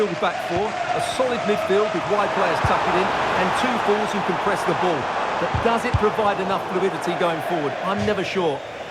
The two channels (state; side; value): identical; both; correlation 1.00